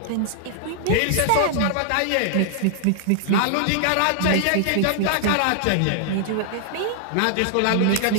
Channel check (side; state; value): both; different; correlation 0.00